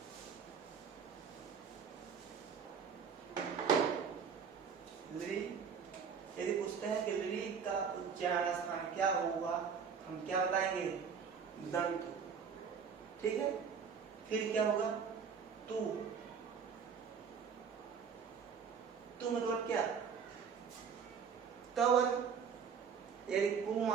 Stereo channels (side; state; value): left; quieter; 6.5 dB